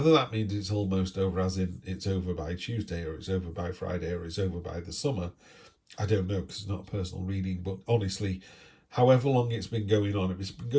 that means it's almost over as in it's over by Tuesday, or it's over by Friday, or it's over by the summer, I don't know, because it's not a personal reading. But honestly, however long it's been going on, if it's been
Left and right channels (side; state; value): both; identical; correlation 1.00